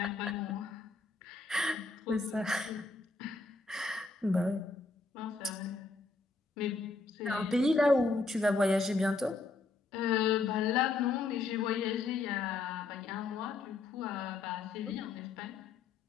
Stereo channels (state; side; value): quieter; right; 3.8 dB